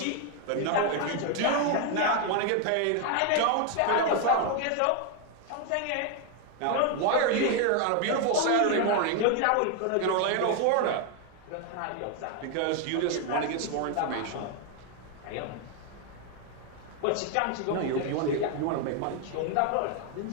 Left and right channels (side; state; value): both; different; correlation 0.01